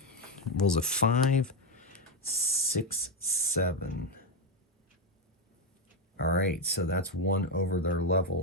Rolls a 5, 6, 7. All right, so that's 1 over their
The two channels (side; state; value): both; normal; correlation 0.08